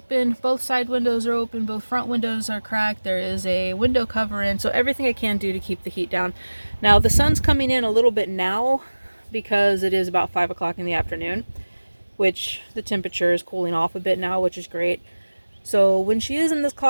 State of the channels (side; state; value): both; inverted; correlation -1.00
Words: Both side windows are open. Both front windows are cracked. There is a window cover in. So everything I can do to keep the heat down. Now the sun's coming in a little bit now because it is about 5 o'clock in the afternoon, which the temperature is cooling off a bit now, which is great. So when she is in this